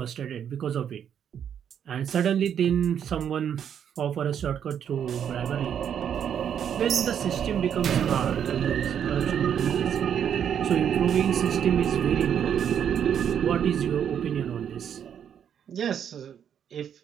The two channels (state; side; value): quieter; left; 8.7 dB